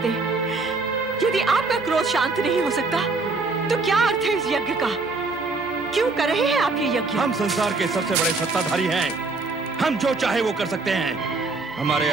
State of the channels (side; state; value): left; quieter; 3.8 dB